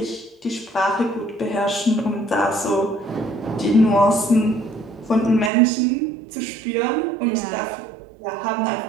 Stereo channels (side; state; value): left; drops out; at 5.5 s